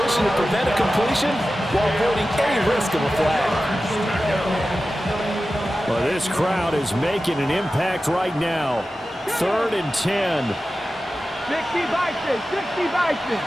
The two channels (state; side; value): normal; both; correlation 0.94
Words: to prevent a completion while avoiding any risk of a flag. Well, this crowd is making an impact right now. 3rd and 10. 60 Bison. 60 Bison.